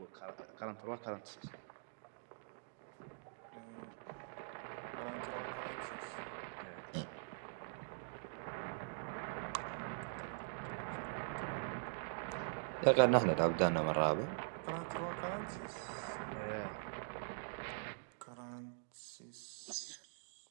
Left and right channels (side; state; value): left; silent; digital silence